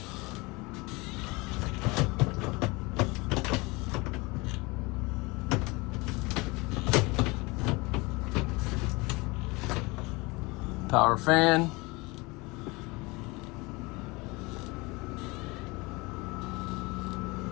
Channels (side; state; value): right; quieter; 24.9 dB